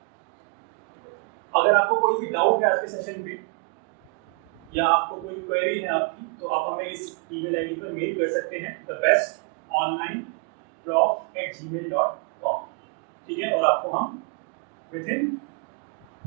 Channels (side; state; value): left; quieter; 34.5 dB